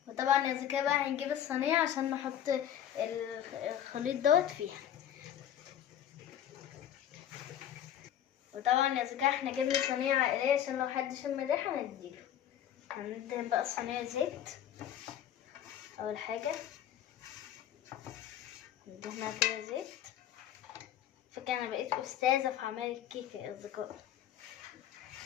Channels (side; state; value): right; quieter; 10.6 dB